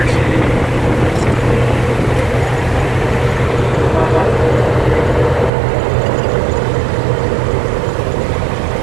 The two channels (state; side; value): drops out; left; at 5.5 s